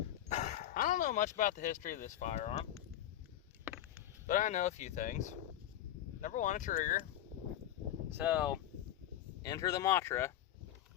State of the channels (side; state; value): right; quieter; 12.0 dB